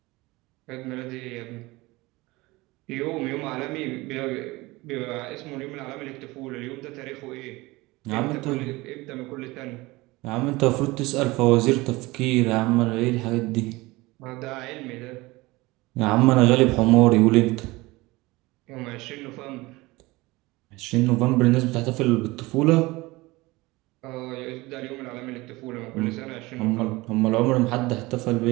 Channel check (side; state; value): left; quieter; 21.5 dB